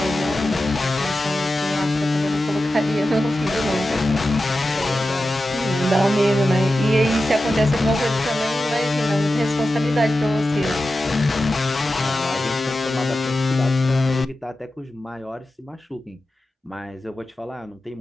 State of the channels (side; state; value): both; normal; correlation 0.92